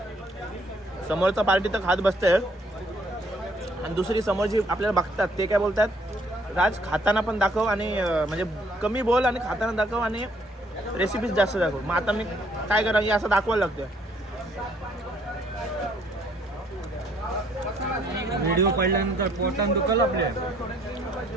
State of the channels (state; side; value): normal; both; correlation 0.65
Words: समोरचा पार्टी तर खात बसते आणि दुसरी समोरची आपल्याला बघतात ते काय बोलतात, राज खाताना पण दाखव आणि म्हणजे कमी बोल आणि खाताना दाखव आणि रेसिपीज जास्त दाखव. मग आता मी काय करा की असं दाखवायला लागतं. व्हिडिओ पाहिल्यानंतर पोटान दुखल आपल्या.